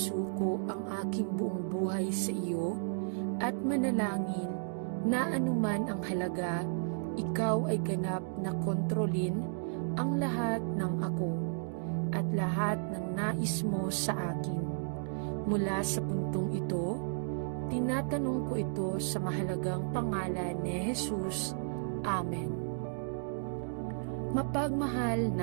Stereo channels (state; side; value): silent; left; digital silence